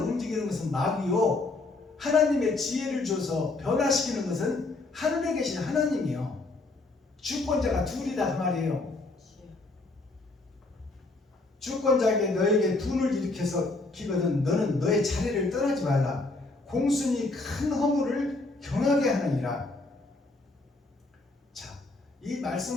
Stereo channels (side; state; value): right; quieter; 3.2 dB